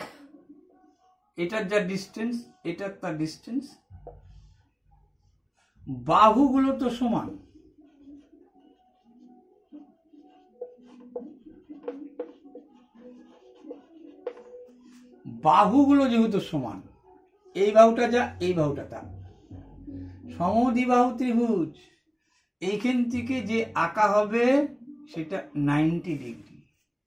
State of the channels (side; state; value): both; identical; correlation 1.00